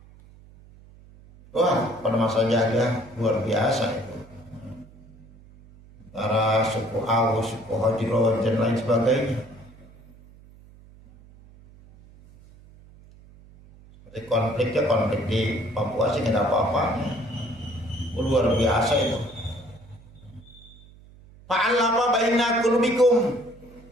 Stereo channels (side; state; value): right; noise; hum, 23 dB below the sound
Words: Wah, pada masa jahiliyah luar biasa itu. Antara suku Aus, suku Hajro, dan lain sebagainya. Seperti konflik di Papua sih nggak ada apa-apanya. Luar biasa itu. Fa'alafa baina qulubikum.